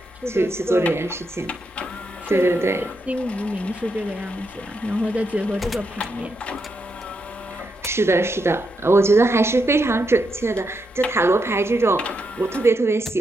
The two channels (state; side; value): normal; both; correlation 0.82